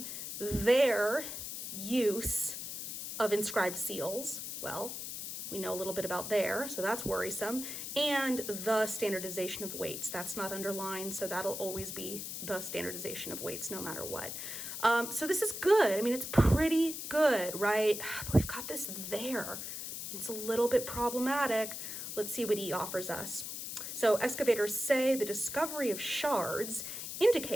their use of inscribed seals. Well, we know a little bit about there, so that's worrisome. And the standardization of weights. That's not underlined, so that'll always be the standardization of weights no matter what. So this is good. I mean, it's pretty good, right? But we've got this there. It's a little bit problematic. Let's see what E offers us. So excavators say the discovery of shards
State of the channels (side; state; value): left; noise; hiss, 6 dB below the sound